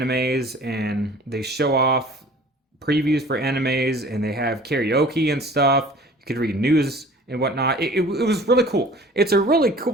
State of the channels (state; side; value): normal; both; correlation 0.47